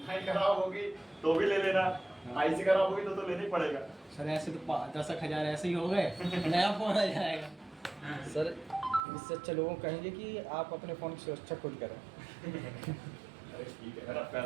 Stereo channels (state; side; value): drops out; left; at 9.0 s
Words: लाइन खराब होगी तो भी ले लेना, आईसी खराब होगी तो लेना ही पड़ेगा। सर ऐसे तो 10,000 ऐसे ही हो गए, नया फोन आ जाएगा। सर इससे अच्छा लोगों को कहेंगे कि आप अपने फ़ोन की सुरक्षा खुद करें। अरे ठीक है ना,